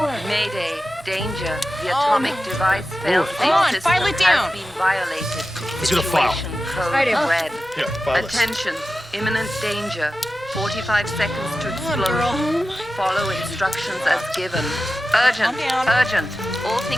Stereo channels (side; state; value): both; normal; correlation 0.93